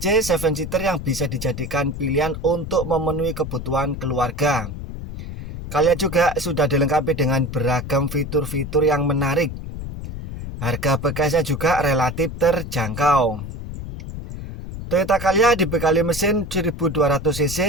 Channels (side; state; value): left; noise; rumble, 8 dB below the sound